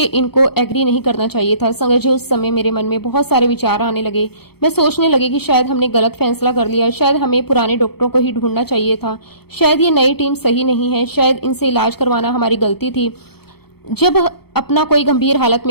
इनको एग्री नहीं करना चाहिए था। संगत जी, उस समय मेरे मन में बहुत सारे विचार आने लगे। मैं सोचने लगी कि शायद हमने गलत फैसला कर लिया, शायद हमें पुराने डॉक्टरों को ही ढूंढना चाहिए था, शायद ये नई टीम सही नहीं है, शायद इनसे इलाज करवाना हमारी गलती थी। जब अपना कोई गंभीर हालत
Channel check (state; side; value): late; right; 0.96 ms